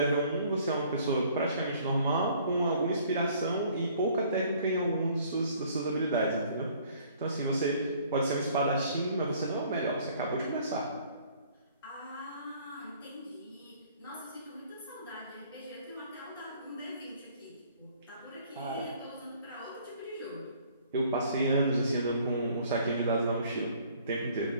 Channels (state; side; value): inverted; both; correlation -0.58